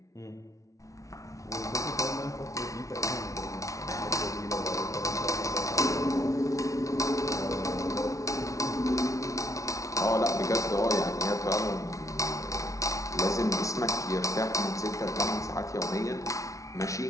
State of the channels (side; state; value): right; late; 0.16 ms